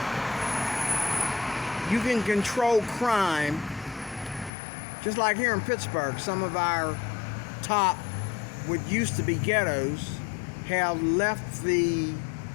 you can control crime, just like here in Pittsburgh. Some of our top, what used to be ghettos, have left the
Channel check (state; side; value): drops out; right; at 4.5 s